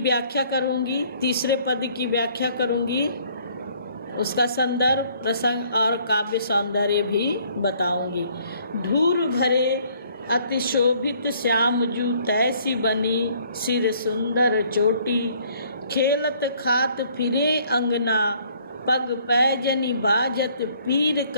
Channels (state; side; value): inverted; both; correlation -0.61